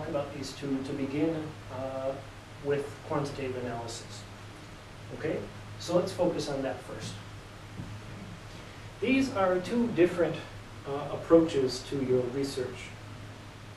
about these two to begin with quantitative analysis. Okay? So let's focus on that first. These are two different approaches to your research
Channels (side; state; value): both; identical; correlation 1.00